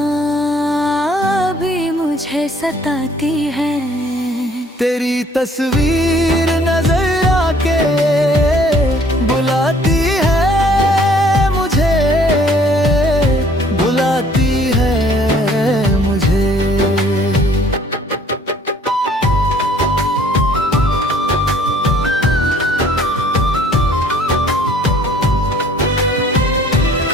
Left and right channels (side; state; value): both; normal; correlation 0.57